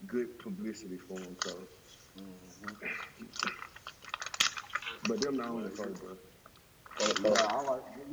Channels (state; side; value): identical; both; correlation 1.00